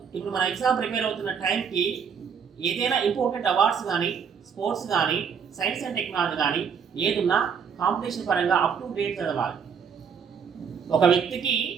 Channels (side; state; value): left; quieter; 6.8 dB